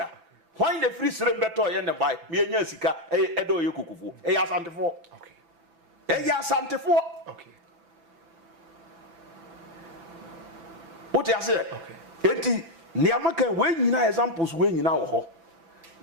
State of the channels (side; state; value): left; late; 6.0 ms